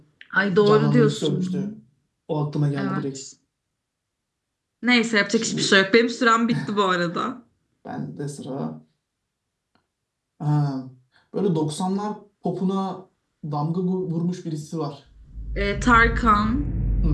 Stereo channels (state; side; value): identical; both; correlation 1.00